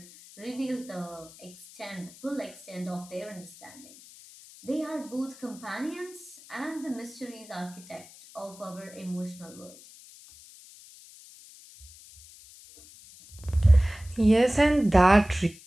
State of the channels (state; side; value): noise; left; hiss, 20 dB below the sound